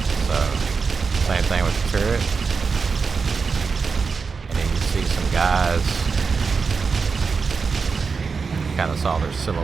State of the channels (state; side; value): quieter; left; 5.1 dB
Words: same thing with the turret. And then you see some guys. Kind of saw their